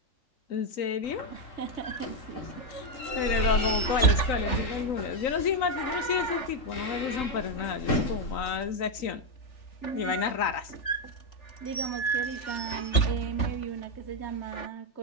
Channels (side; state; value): right; late; 3.4 ms